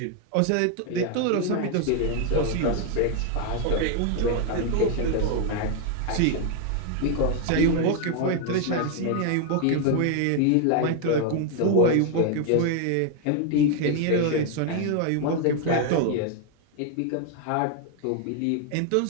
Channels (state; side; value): different; both; correlation 0.01